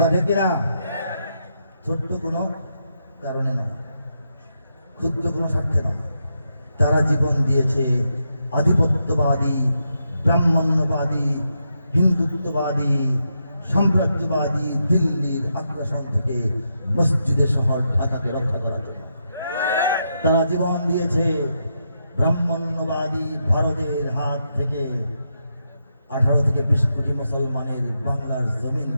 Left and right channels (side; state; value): both; inverted; correlation -0.83